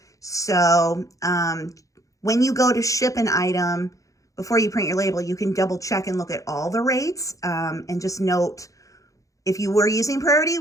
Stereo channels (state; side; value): late; right; 0.16 ms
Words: So when you go to ship an item, before you print your label, you can double check and look at all the rates, and just note if you were using priority,